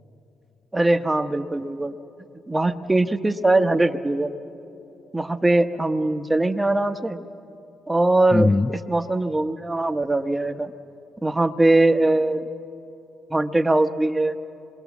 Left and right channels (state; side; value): normal; both; correlation 0.97